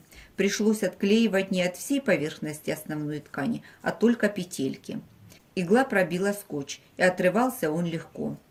Пришлось отклеивать не от всей поверхности основной ткани, а только петельки. Игла пробила скотч, и отрывался он легко.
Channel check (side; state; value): both; identical; correlation 1.00